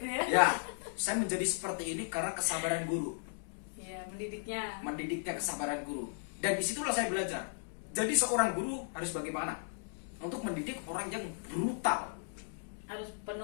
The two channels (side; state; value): right; silent; digital silence